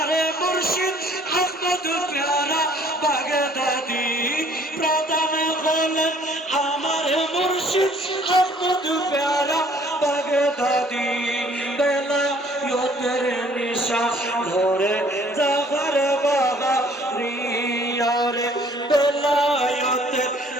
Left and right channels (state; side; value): normal; both; correlation 0.58